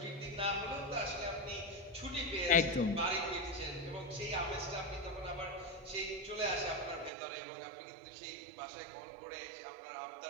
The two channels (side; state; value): left; drops out; at 7.1 s